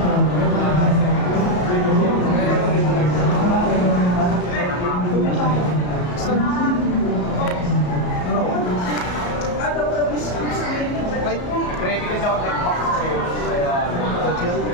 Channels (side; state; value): right; late; 33 ms